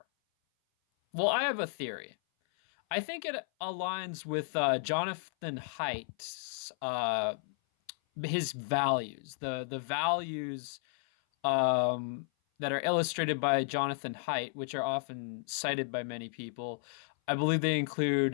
Well, I have a theory. I think it aligns with Jonathan Haidt's his values, the values that are illustrated by Jonathan Haidt, which are often cited by many people. I believe they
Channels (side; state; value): right; silent; 56 dB below the other